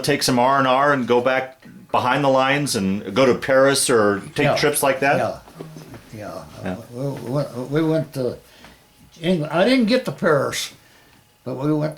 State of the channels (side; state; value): both; identical; correlation 1.00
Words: take some R&R and go back behind the lines and go to Paris or take trips like that? Yeah. We went to England. I didn't get to Paris, but we went